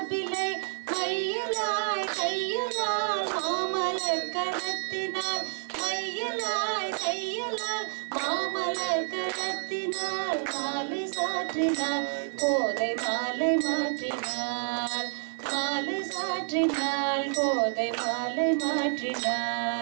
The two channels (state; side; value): silent; left; 58 dB below the other